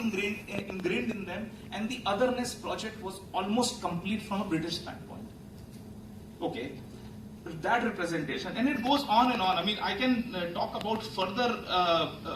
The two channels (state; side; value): identical; both; correlation 1.00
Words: in them, and the otherness project was almost complete from a British standpoint. Okay, that representation, and it goes on and on. I mean, I can talk about further,